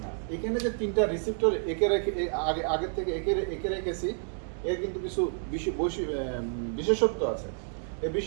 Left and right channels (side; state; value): left; silent; 58 dB below the other